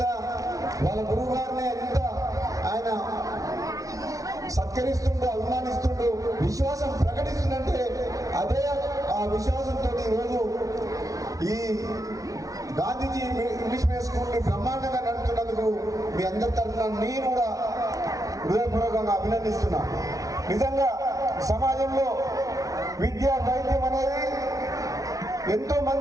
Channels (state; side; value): late; left; 0.17 ms